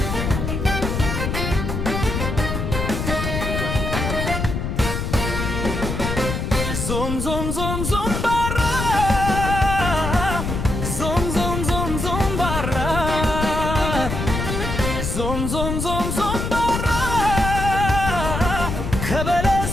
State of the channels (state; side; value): noise; left; rumble, 3 dB below the sound